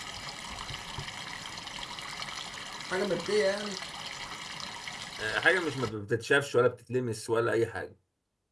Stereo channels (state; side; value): identical; both; correlation 1.00